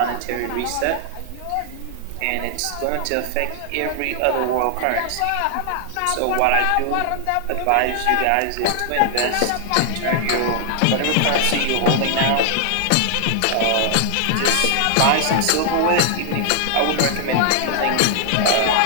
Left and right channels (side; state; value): both; different; correlation 0.00